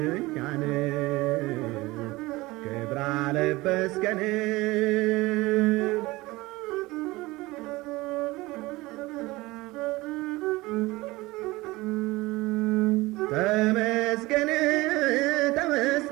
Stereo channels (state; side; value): quieter; left; 20.7 dB